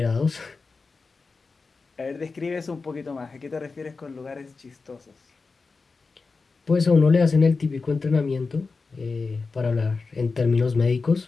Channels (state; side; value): quieter; right; 4.3 dB